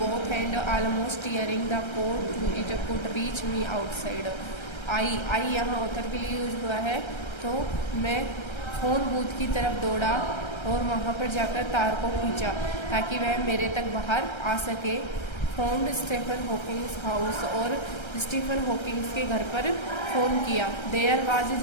and almost tearing the code to it could reach me outside. I यहाँ ऑथर के लिए यूज हुआ है, तो मैं फ़ोन बूथ की तरफ दौड़ा और वहाँ पर जाकर तार को खींचा ताकि वह मेरे तक बाहर आ सके. फोन स्टीफन हॉकिंग्स हाउस, और स्टीफन हॉकिंग्स के घर पर फ़ोन किया. There was his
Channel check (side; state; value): right; late; 1.3 ms